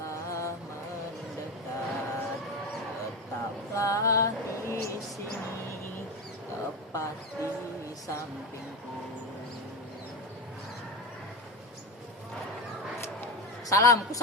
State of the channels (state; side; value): normal; both; correlation 0.20